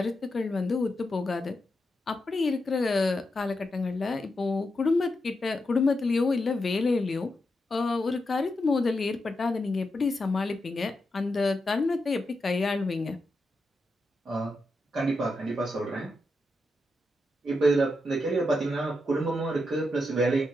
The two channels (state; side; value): normal; both; correlation 0.86